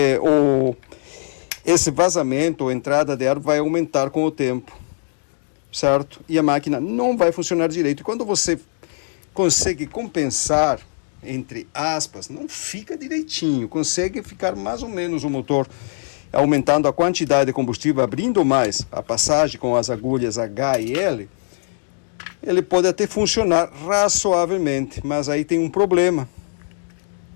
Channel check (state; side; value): silent; right; digital silence